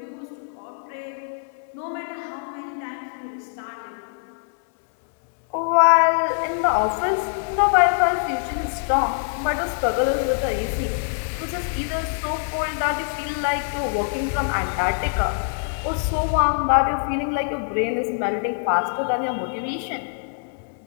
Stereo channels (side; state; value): right; silent; digital silence